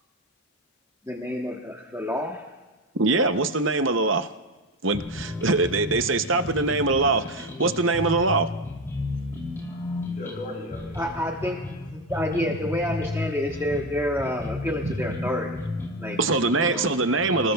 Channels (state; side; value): normal; both; correlation 0.15